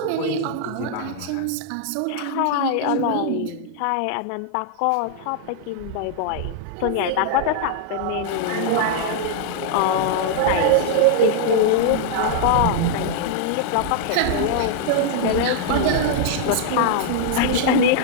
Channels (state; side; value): different; both; correlation -0.01